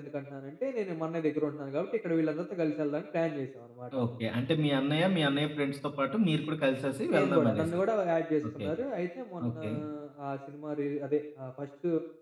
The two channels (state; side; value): identical; both; correlation 1.00